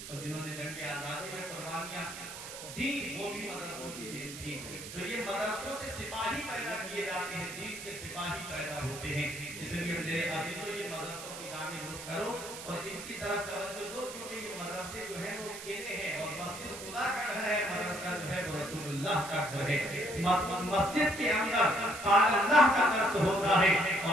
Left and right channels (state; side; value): noise; right; hiss, 11 dB below the sound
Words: اور جنہوں نے جنگ آزادی میں قربانیاں دی، وہ بھی مدرسوں کی دین تھی۔ تو یہ مدرسوں سے سپاہی پیدا کیے جاتے ہیں، دین کے سپاہی پیدا ہوتے ہیں۔ اس لیے میرے عزیزوں، یہ مدرسوں کی جانب رخ کرو اور ان کی طرف توجہ دو، کیونکہ یہ مدرسے جو ہیں وہ کیلے ہیں، اور مسجد خدا کا گھر ہے، مدرسہ جو ہے وہ رسول اللہ کا گھر ہے۔ مسجد کے اندر قال اللہ کا درس ہوتا ہے